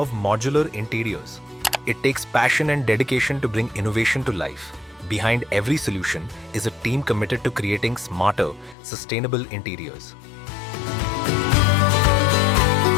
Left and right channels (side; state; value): right; drops out; at 8.8 s